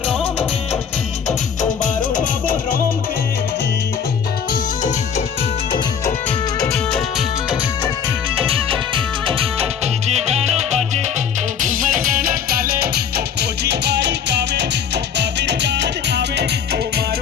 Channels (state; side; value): quieter; right; 7.5 dB